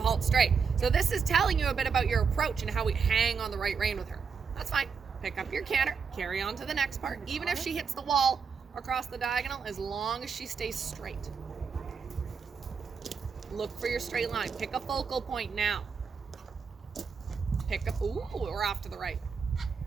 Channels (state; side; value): quieter; left; 5.8 dB